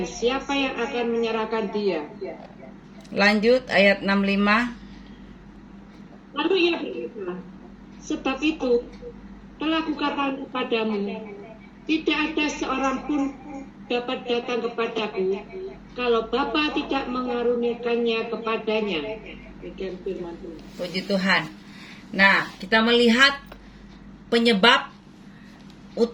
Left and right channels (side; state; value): both; identical; correlation 1.00